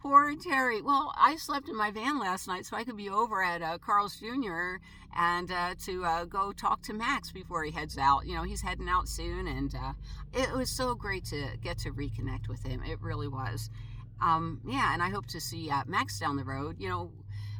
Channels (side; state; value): both; identical; correlation 1.00